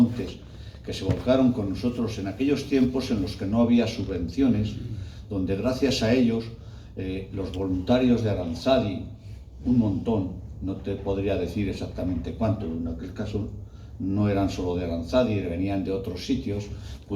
que se volcaron con nosotros en aquellos tiempos en los que no había subvenciones, donde gracias a ellos los voluntarios de Aranzadi, un montón, no te podría decir exactamente cuánto, en aquel caso no eran solo de Aranzadi, venían de otros sitios,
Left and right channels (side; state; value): both; identical; correlation 1.00